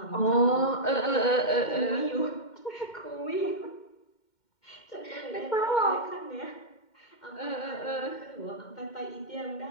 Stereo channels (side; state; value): right; late; 2.1 ms